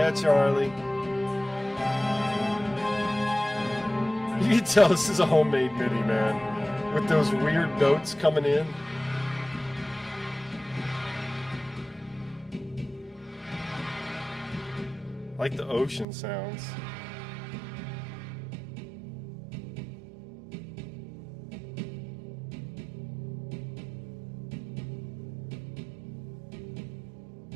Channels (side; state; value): left; drops out; at 16.1 s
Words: Charlie. You can tell this is a homemade MIDI, man. With those weird notes coming in. Like the ocean sounds.